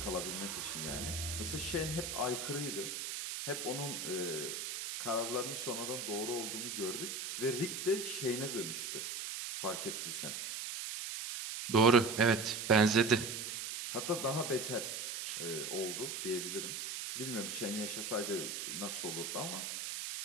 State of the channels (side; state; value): right; noise; hiss, 5 dB below the sound